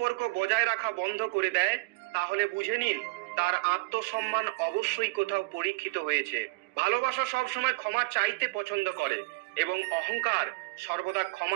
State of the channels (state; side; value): quieter; left; 25.5 dB